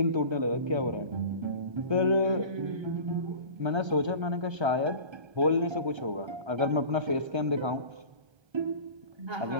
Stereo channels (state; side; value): late; left; 1.3 ms